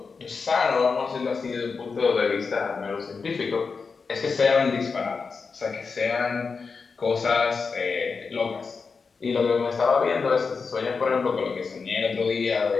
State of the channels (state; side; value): quieter; right; 5.0 dB